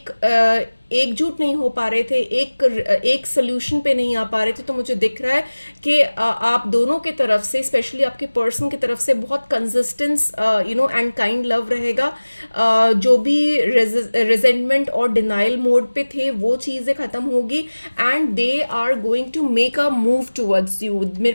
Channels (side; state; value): both; inverted; correlation -1.00